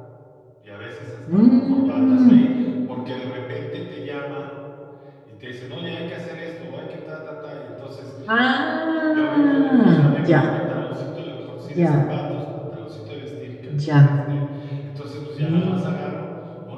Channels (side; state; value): both; identical; correlation 1.00